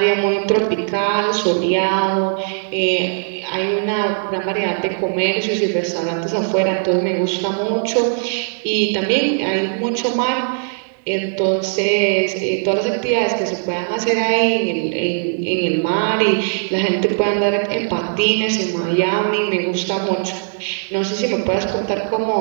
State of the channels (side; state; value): left; silent; digital silence